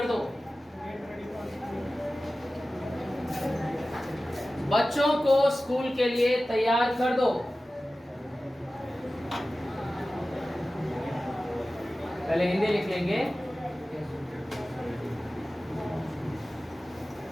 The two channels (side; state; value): both; normal; correlation 0.96